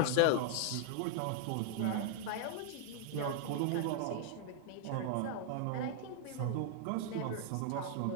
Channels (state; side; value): different; both; correlation -0.01